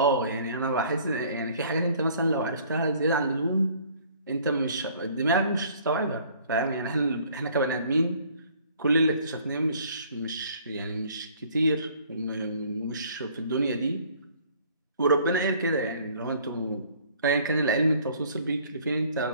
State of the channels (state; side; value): inverted; both; correlation -0.57